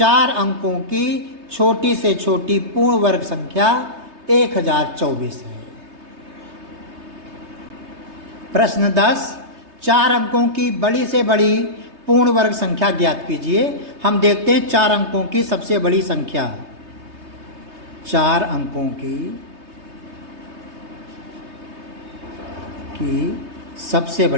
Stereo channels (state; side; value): late; left; 3.3 ms